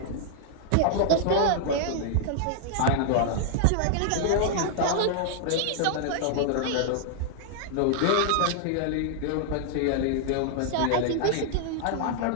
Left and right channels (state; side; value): different; both; correlation -0.01